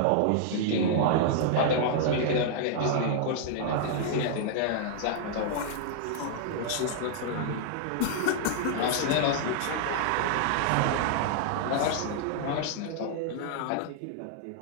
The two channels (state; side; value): different; both; correlation -0.01